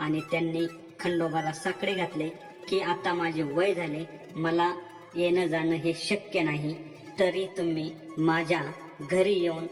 त्यांनी खंडोबाला साकडे घातले की आता माझे वय झाले, मला येणं जाणं हे शक्य नाही, तरी तुम्ही माझ्या घरी येऊन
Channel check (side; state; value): both; identical; correlation 1.00